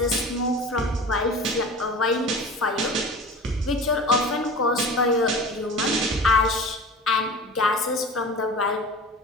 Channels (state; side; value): normal; both; correlation 0.37